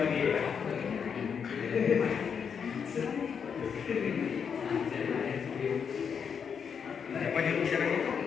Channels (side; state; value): right; quieter; 6.8 dB